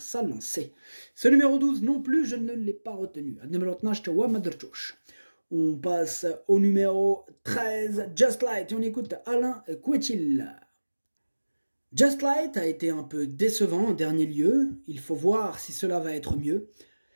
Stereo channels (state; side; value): inverted; both; correlation -1.00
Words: sa lancée. Ce numéro 12 non plus, je ne l'ai pas retenu. On passe au numéro 13, Just Light, et on écoute Alain Couetil. Just Light a été un peu décevant en dernier lieu, il faut voir si cela va être mieux.